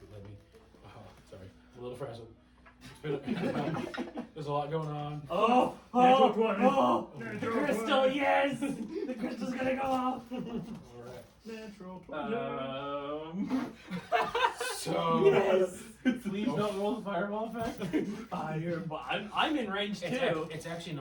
Let me. Oh, sorry. A little frazzled. There's a lot going on. Oh! Natural 20. The crystal, yes! The crystal's gonna go off. All right. Natural 20. So. Yes! Please don't roll the fireball effect. Fireball. I'm in range too. It's actually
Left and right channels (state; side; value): identical; both; correlation 1.00